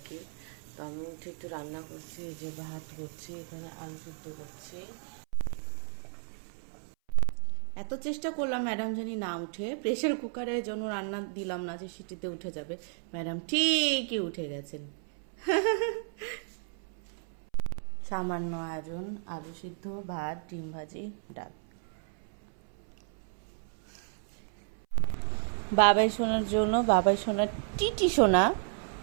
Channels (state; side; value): silent; left; 56 dB below the other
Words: কি। তো আমি উঠে একটু রান্না করছি, যে ভাত করছি, এখানে আলু সিদ্ধ করছি। এত চেষ্টা করলাম ম্যাডাম জানি না উঠে, প্রেসার কুকারের জন্য রান্না দিলাম না যে সিটিতে উঠে যাবে। ম্যাডাম ঠিকই উঠে গেছেন। সামান্য আয়োজন, আলু সিদ্ধ, ভাত, ডিম ভাজি, ডাল। বাবাই সোনার জন্য, বাবাই সোনার টিটি সোনা